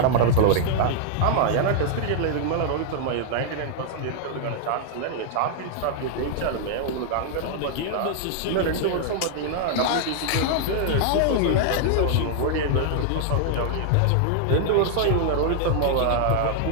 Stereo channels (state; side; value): different; both; correlation -0.01